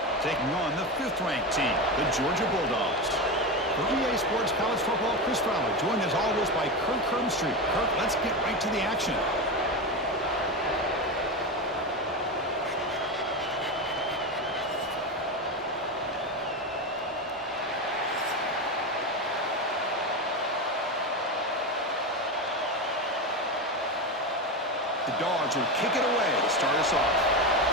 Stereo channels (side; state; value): both; normal; correlation 0.17